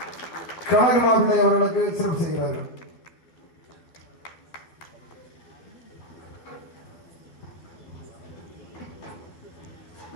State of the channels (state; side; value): late; right; 12 ms